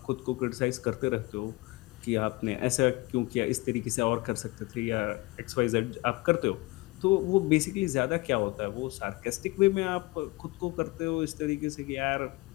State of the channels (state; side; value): quieter; right; 23.0 dB